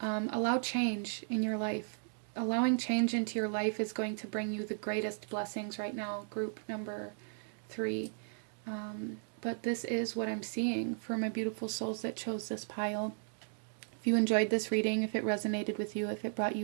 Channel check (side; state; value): left; silent; digital silence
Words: change in your life. Allowing change into your life is going to bring you the greatest blessings right now, group number 3. But this is what I'm seeing for my beautiful souls that chose this pile. If you enjoyed this reading, if it resonated with you, if it brought